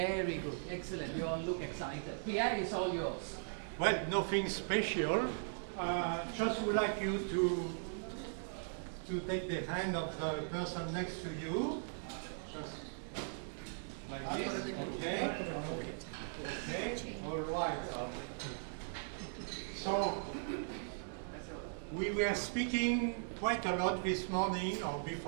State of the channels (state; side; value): silent; left; digital silence